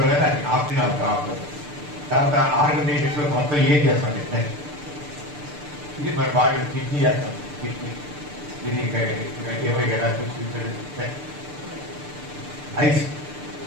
ఆప్షన్ ఆఫ్టర్ తర్వాత ఆర్గనైజేషన్ మొత్తం ఏం చేస్తాం. నెక్స్ట్ ఇది మన బాడీ కిడ్నీ చేస్తాం. కిడ్నీ ఇది ఏమైనా ఐస్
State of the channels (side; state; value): left; late; 6.8 ms